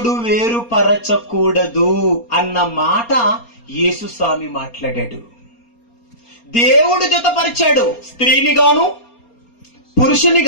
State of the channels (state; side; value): late; right; 4.3 ms